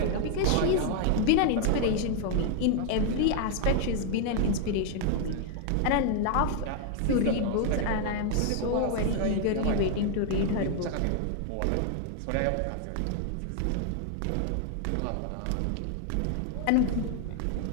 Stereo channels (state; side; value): different; both; correlation 0.00